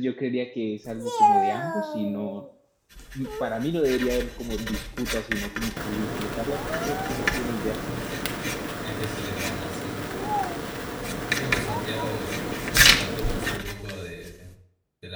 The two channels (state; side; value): identical; both; correlation 1.00